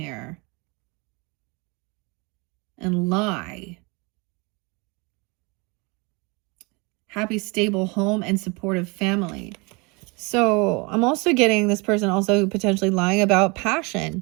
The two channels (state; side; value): quieter; left; 28.6 dB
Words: and lie. Happy, stable home and supportive family. So I'm also getting this person also potentially lying about